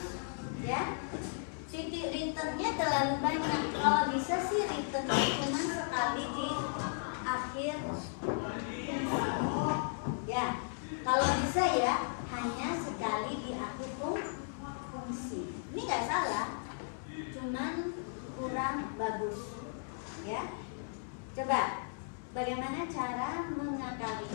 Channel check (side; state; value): right; silent; 54 dB below the other